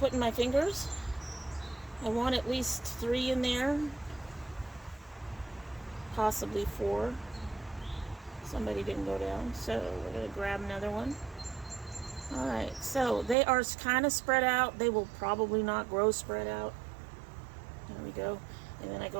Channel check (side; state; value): left; drops out; at 13.4 s